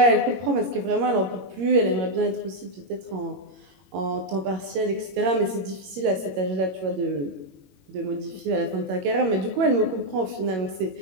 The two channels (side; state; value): left; late; 21 ms